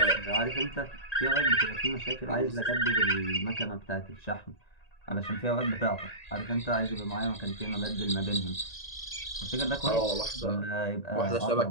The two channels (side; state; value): right; late; 1.9 ms